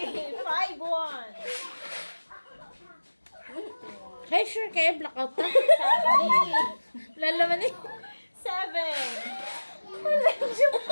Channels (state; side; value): inverted; both; correlation -1.00